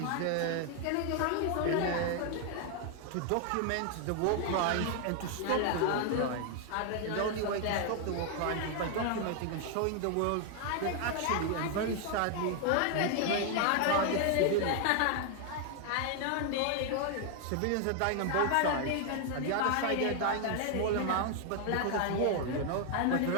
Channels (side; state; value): both; different; correlation 0.00